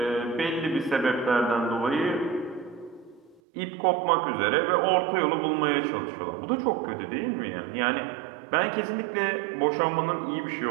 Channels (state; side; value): drops out; left; at 3.4 s